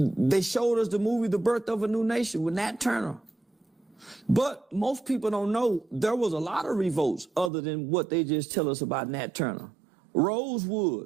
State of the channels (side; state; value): left; drops out; at 7.5 s